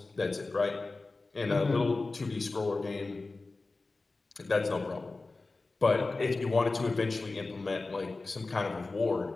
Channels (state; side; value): quieter; right; 3.5 dB